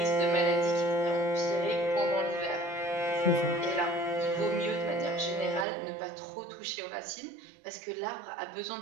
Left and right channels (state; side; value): drops out; left; at 5.7 s